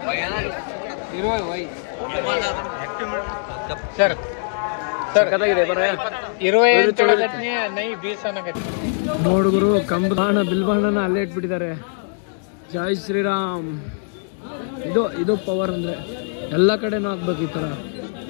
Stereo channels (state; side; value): silent; right; digital silence